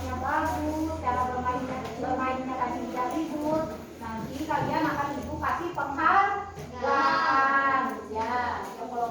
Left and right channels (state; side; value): identical; both; correlation 1.00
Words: bagus, cara bermainnya tadi tidak ribut. Nanti kalian akan Ibu kasih penghargaan ya.